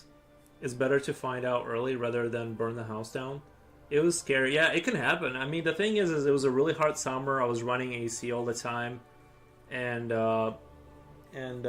It's better to find out early rather than burn the house down. It was scary. Yeah, it can happen. I mean, the thing is it was a really hot summer. I was running AC all the time, and I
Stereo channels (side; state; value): both; identical; correlation 1.00